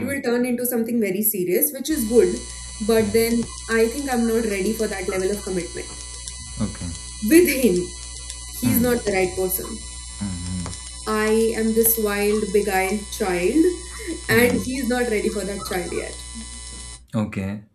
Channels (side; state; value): both; identical; correlation 1.00